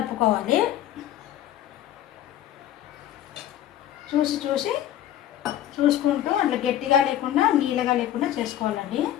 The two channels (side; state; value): right; quieter; 11.9 dB